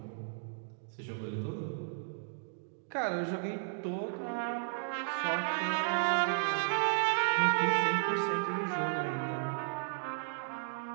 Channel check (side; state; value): left; silent; digital silence